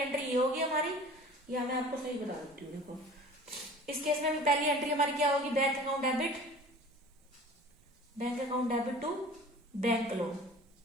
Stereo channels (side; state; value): both; normal; correlation 0.44